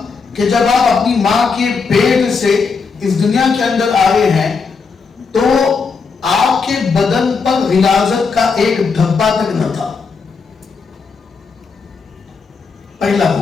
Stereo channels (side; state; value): right; quieter; 5.0 dB